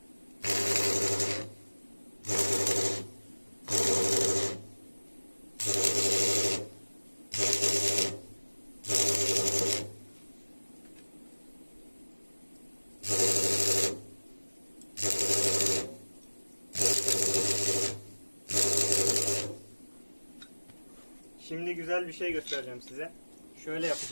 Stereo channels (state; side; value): inverted; both; correlation -1.00